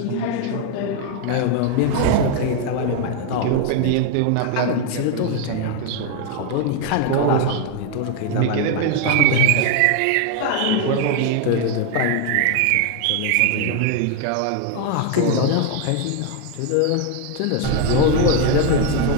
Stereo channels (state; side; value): different; both; correlation 0.01